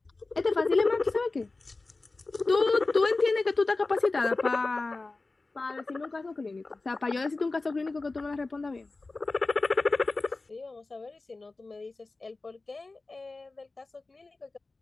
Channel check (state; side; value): quieter; right; 3.4 dB